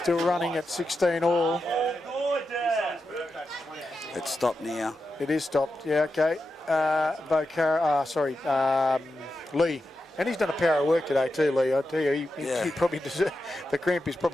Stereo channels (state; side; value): normal; both; correlation 0.89